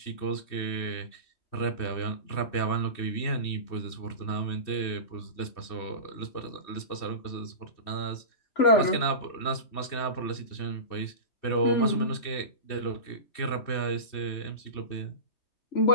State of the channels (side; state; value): right; late; 2.7 ms